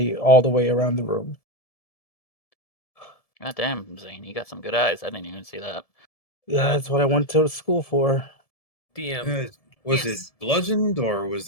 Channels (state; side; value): late; right; 1.7 ms